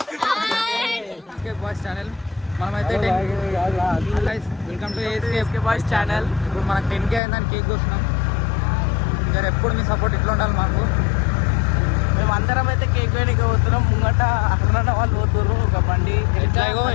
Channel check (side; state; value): right; drops out; at 7.2 s